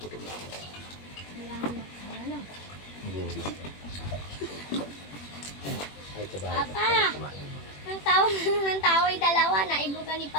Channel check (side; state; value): right; late; 21 ms